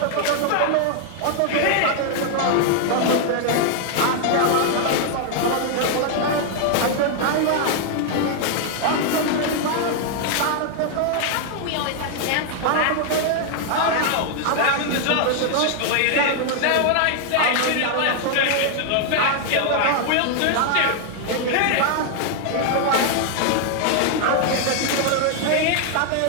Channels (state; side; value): different; both; correlation 0.00